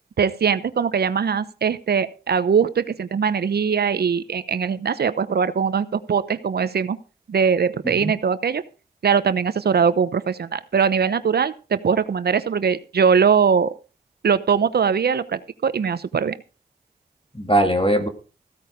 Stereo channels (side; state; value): left; quieter; 5.7 dB